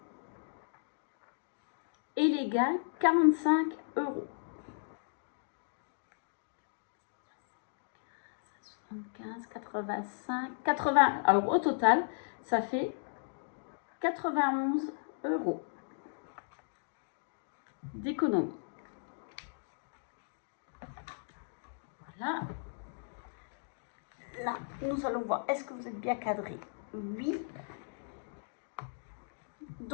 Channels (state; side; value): silent; right; digital silence